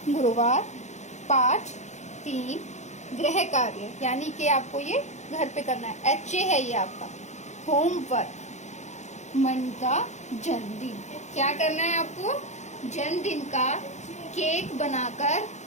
गुरुवार, पाठ 3, गृह कार्य, यानी कि आपको ये घर पे करना है, HA है ये आपका होमवर्क। मन का जन्मदिन, क्या करना है आपको, जन्मदिन का केक बनाकर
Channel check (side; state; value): right; late; 0.34 ms